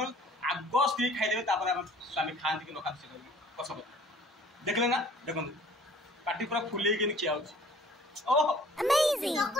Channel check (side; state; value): both; normal; correlation 0.53